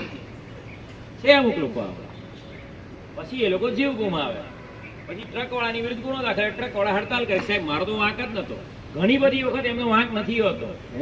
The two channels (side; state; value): both; identical; correlation 1.00